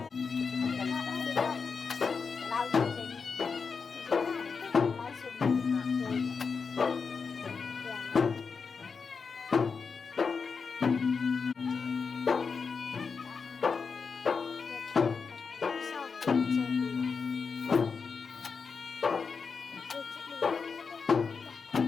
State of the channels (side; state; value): right; quieter; 5.3 dB